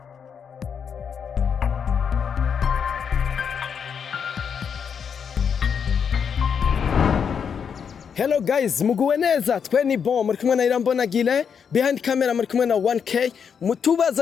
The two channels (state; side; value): quieter; right; 7.0 dB